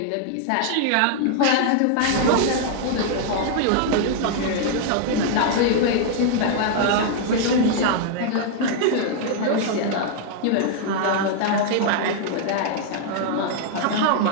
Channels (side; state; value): both; different; correlation 0.00